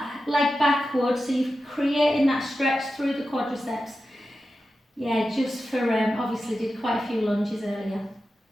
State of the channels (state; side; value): normal; both; correlation 0.92